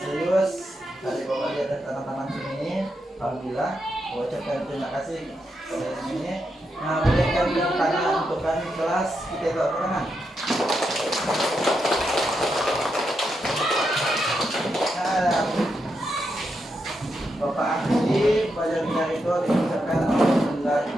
serius. Dari Bapak lihat ada tangan-tangan sini. Alhamdulillah, ucapkan terima kasih kepada sini. Nah, boleh kami tangan untuk kami kelas kita bawa ke tangan. Nah, Bapak akhiri pelajaran itu diucapkan alhamdulillah.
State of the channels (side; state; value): both; normal; correlation 0.84